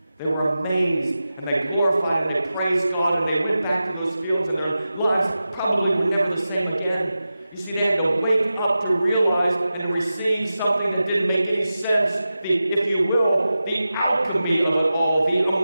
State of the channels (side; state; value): both; inverted; correlation -0.93